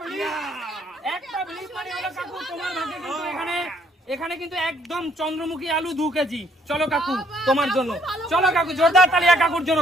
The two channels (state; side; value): normal; both; correlation 0.65